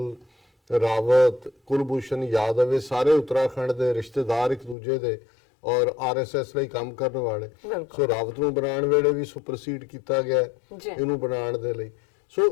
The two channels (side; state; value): right; drops out; at 4.8 s